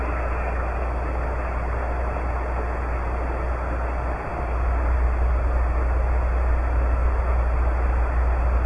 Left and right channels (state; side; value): identical; both; correlation 1.00